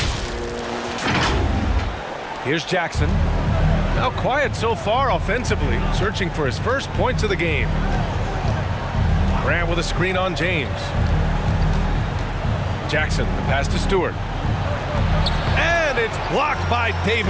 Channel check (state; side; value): identical; both; correlation 1.00